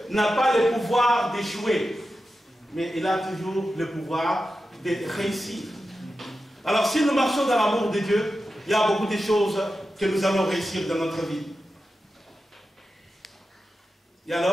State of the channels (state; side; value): normal; both; correlation 0.91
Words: n'a pas le pouvoir d'échouer, mais il a toujours le pouvoir de réussir. Alors si nous marchons dans l'amour de Dieu, il y a beaucoup de choses que nous allons réussir dans notre vie. Et